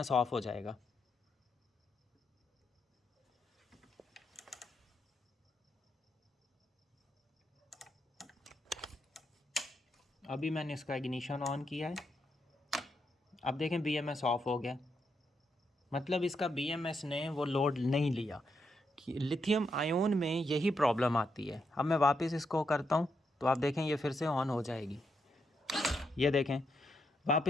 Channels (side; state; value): both; normal; correlation 0.81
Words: ऑफ हो जाएगा। अभी मैंने इसका इग्निशन ऑन किया है, अब देखें BMS ऑफ हो गया। मतलब इसका BMS ने वो लोड नहीं लिया। लिथियम आयोन में यही प्रॉब्लम आती है। अब मैं वापस इसको करता हूँ तो आप देखें ये फिर से ऑन हो जाएगी। ये देखें